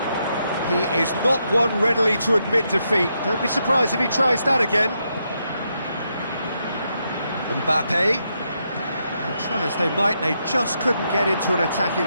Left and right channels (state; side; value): inverted; both; correlation -0.80